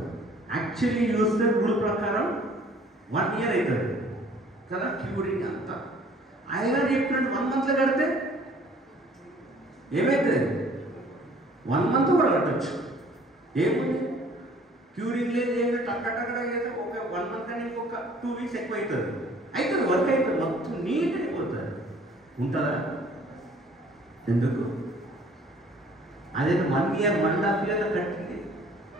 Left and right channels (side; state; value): both; normal; correlation 0.54